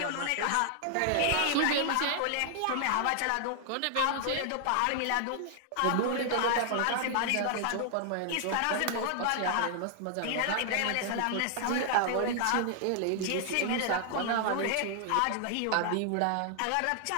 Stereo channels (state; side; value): different; both; correlation 0.00